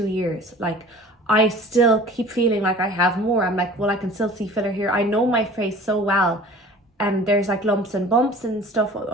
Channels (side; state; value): both; normal; correlation 0.44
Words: years. Like, I still keep feeling like I have more. I'm like, well, I can still see filler here. I know my face so well, and there's like lumps and bumps and stuff